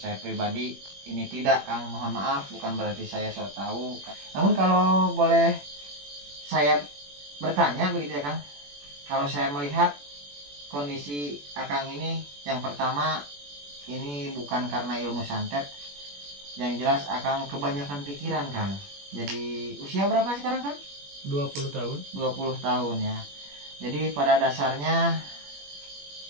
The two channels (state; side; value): late; left; 21 ms